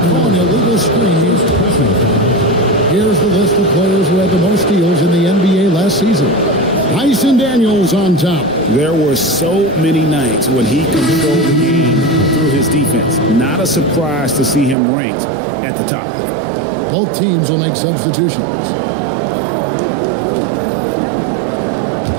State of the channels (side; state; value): left; drops out; at 14.8 s